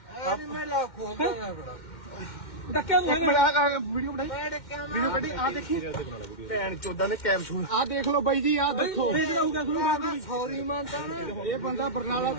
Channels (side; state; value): right; late; 2.1 ms